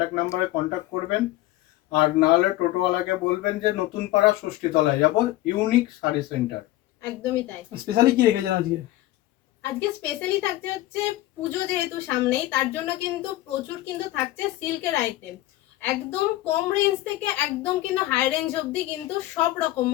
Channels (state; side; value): quieter; right; 16.4 dB